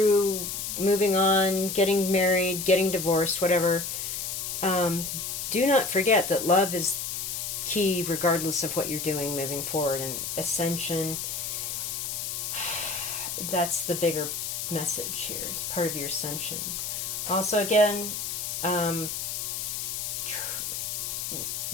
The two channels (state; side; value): noise; left; hiss, 4 dB below the sound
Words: moving on, getting married, getting divorced, whatever. Do not forget that love is key regardless of what you're doing moving forward. And ascension, that's the bigger message here. It's part of your ascension. Also, again,